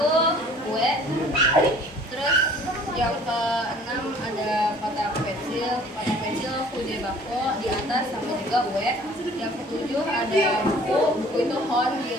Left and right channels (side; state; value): both; normal; correlation 0.52